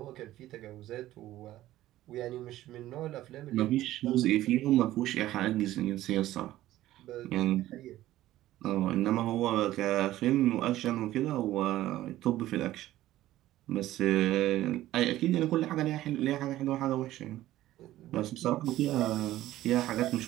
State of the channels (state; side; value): quieter; left; 14.8 dB